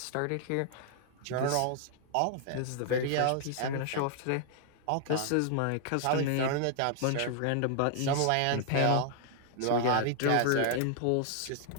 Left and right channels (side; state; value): both; different; correlation 0.00